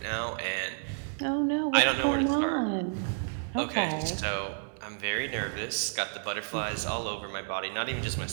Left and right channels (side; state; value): left; silent; digital silence